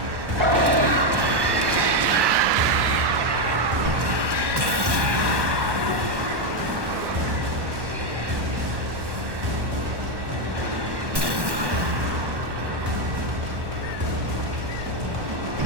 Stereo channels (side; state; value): left; late; 1.1 ms